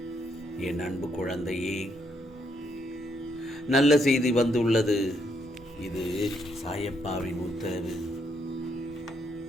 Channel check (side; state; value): both; normal; correlation 0.75